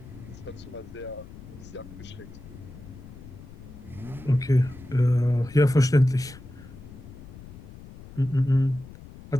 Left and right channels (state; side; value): noise; left; rumble, 16 dB below the sound